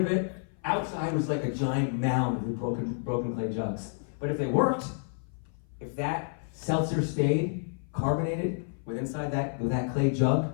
it. Outside was like a giant mound of broken clay jugs. But if they worked, if that seltzer stayed carbonated with inside that clay jug,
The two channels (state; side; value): silent; right; 56 dB below the other